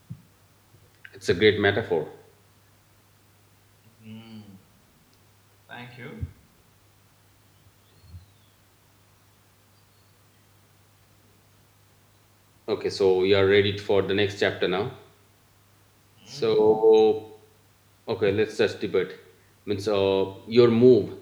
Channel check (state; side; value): identical; both; correlation 1.00